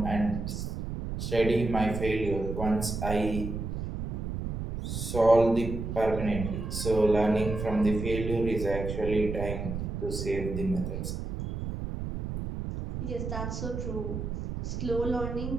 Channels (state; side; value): noise; right; rumble, 5 dB below the sound